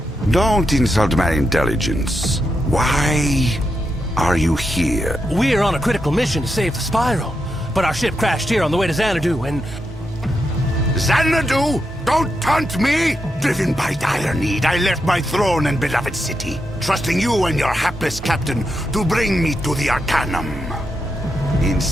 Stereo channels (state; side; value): normal; both; correlation 0.84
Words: Don't insult my intelligence. Why are you here? We're on a critical mission to save the Spiral, but our ship crashed here on the way to Xanadu, and... Xanadu? Don't taunt me! Driven by dire need, I left my throne and beloved city, trusting you and your hapless captain to bring me to the Arcanum.